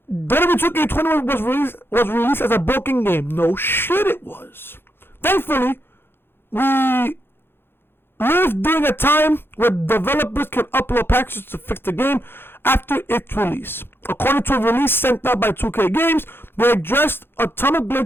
WWE 2K20 was released as a broken game. No shit it was. Thankfully, we live during a time where developers can upload patches to fix the game after its release. According to a release sent out by 2K Games, they addressed a ton of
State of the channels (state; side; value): late; right; 0.11 ms